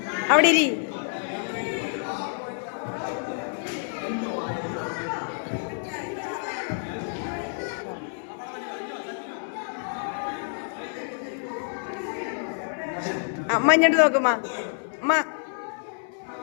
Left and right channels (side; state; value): right; silent; 60 dB below the other